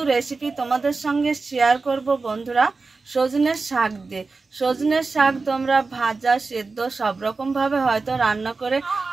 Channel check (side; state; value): left; quieter; 4.0 dB